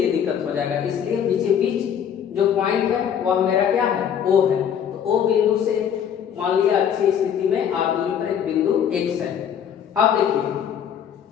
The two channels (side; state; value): right; quieter; 8.5 dB